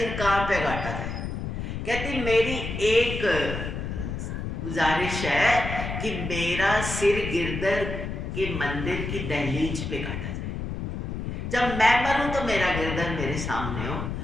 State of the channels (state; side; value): noise; left; rumble, 5 dB below the sound